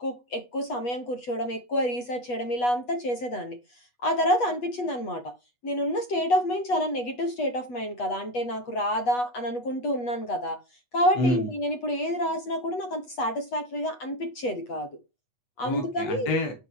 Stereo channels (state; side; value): late; right; 8.2 ms